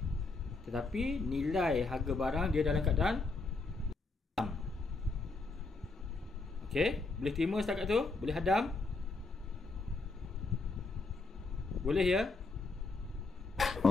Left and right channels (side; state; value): right; quieter; 3.7 dB